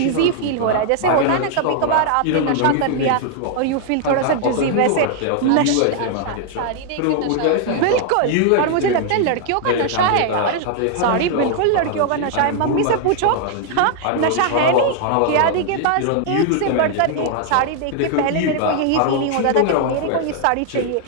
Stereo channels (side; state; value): both; different; correlation 0.00